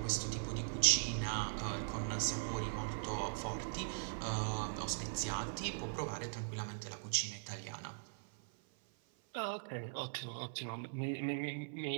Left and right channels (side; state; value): left; silent; 51 dB below the other